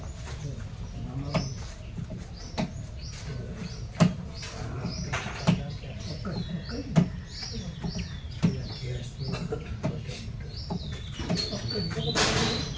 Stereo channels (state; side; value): identical; both; correlation 1.00